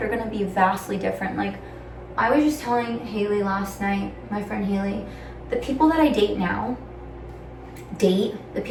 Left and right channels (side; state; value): both; identical; correlation 1.00